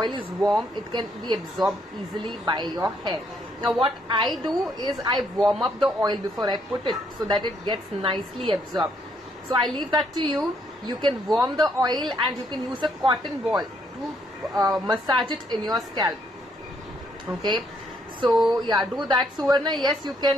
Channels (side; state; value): both; normal; correlation 0.71